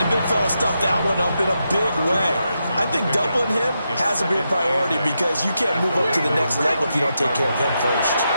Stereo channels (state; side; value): inverted; both; correlation -0.85